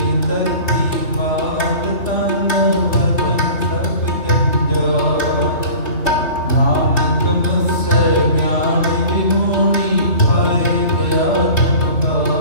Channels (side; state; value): right; late; 3.3 ms